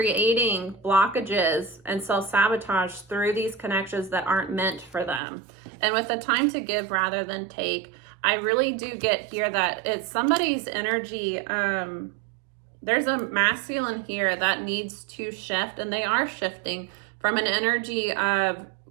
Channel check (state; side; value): drops out; left; at 5.2 s